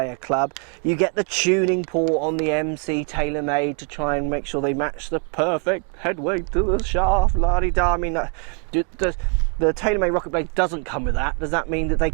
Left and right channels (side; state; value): left; quieter; 39.6 dB